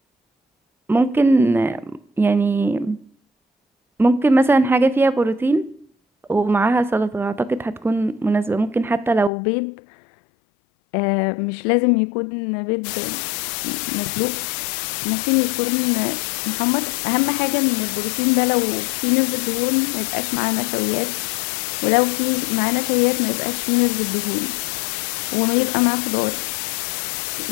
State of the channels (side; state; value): right; drops out; at 9.3 s